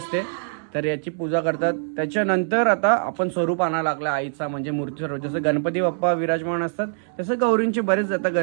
तर याची पूजा करतात. त्याच्यानंतर आता आपण स्वरूप आणायला लागला आईचा म्हणजे मूर्ती स्वरूप. जसं गणपती बाप्पा विराजमान असतात तसं गौरींचे बरेच आता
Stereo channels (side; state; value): left; silent; digital silence